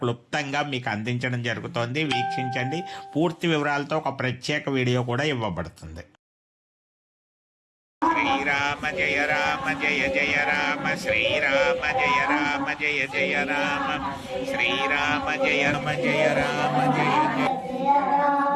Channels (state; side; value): identical; both; correlation 1.00